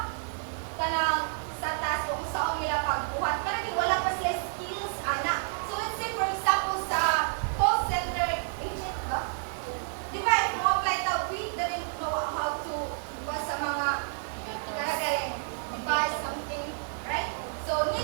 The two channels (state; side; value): silent; left; 55 dB below the other